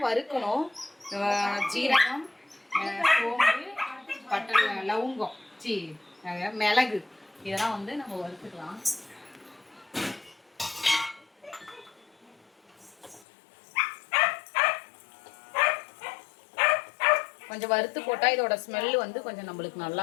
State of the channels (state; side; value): drops out; right; at 13.2 s